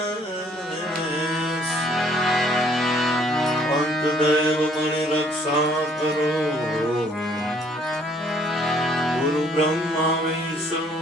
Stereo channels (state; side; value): normal; both; correlation 0.62